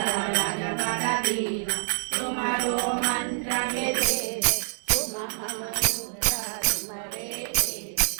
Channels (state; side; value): silent; left; 60 dB below the other